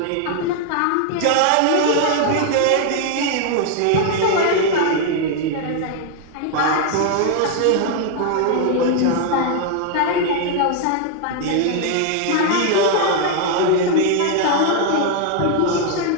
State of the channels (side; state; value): both; different; correlation 0.00